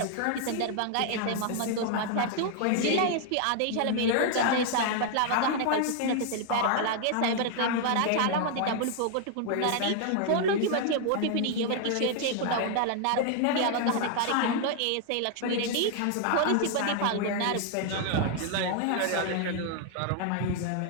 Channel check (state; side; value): different; both; correlation 0.00